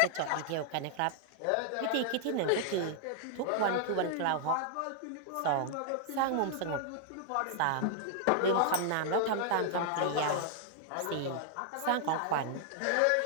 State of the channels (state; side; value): different; both; correlation 0.00